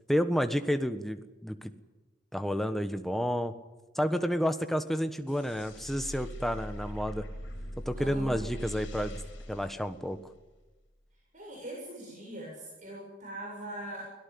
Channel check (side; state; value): both; normal; correlation 0.90